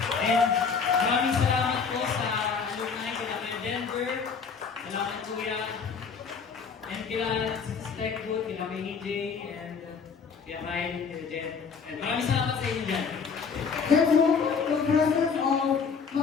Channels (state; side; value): quieter; right; 5.8 dB